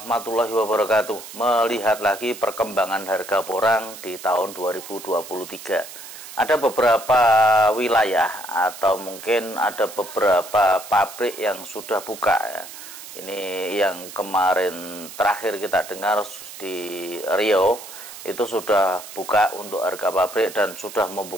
wabarakatuh. Melihat lagi perkembangan harga porang di tahun 2023. Ada beberapa wilayah atau mungkin ada beberapa pabrik yang sudah buka ya. Ini yang kemarin terakhir kita dengar di Riau itu sudah buka untuk harga pabrik dan sudah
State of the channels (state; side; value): noise; right; hiss, 14 dB below the sound